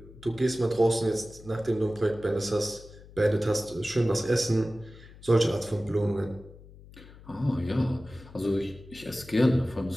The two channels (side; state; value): left; noise; hum, 20 dB below the sound